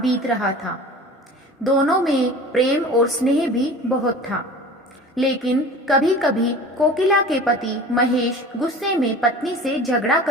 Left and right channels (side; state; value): both; normal; correlation 0.39